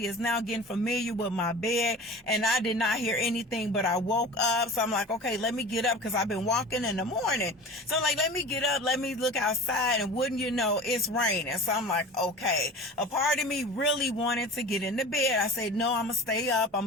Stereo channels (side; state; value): both; normal; correlation 0.37